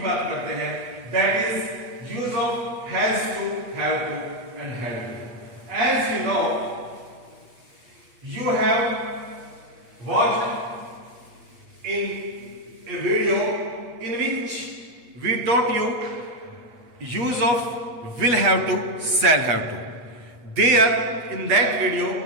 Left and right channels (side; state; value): left; late; 8.2 ms